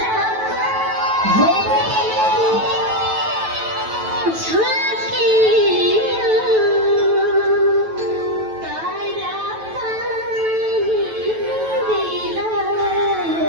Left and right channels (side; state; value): left; late; 9.2 ms